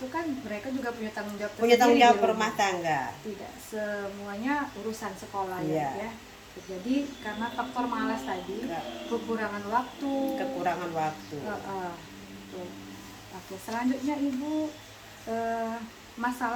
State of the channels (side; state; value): both; identical; correlation 1.00